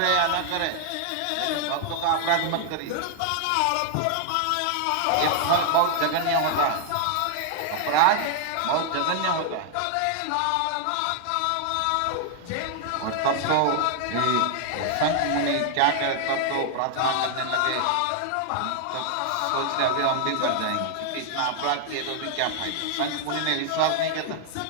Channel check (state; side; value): different; both; correlation 0.00